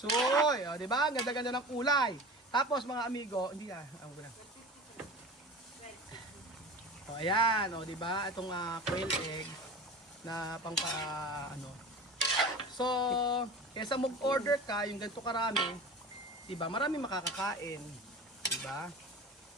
O, di ba? Ganda-ganda ng kulay. Tapos, mga amigo, hindi O, ayan. O, di ba? Itong quail egg na So, kesa mag-order ka, yung ganito karami, diba, marami makakakain. Diba?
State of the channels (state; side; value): normal; both; correlation 0.35